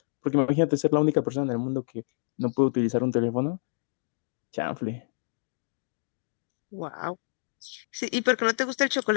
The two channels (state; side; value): silent; right; digital silence